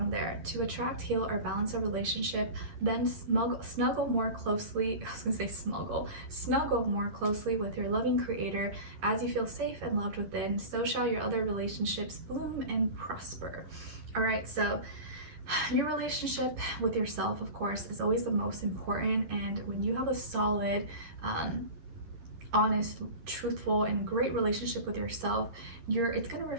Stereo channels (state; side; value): late; left; 11 ms